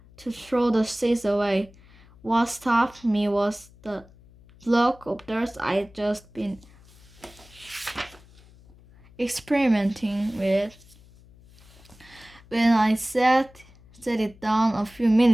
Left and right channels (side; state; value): left; noise; hum, 25 dB below the sound